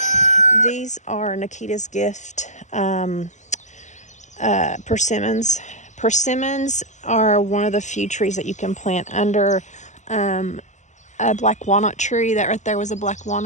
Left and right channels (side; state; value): right; late; 0.34 ms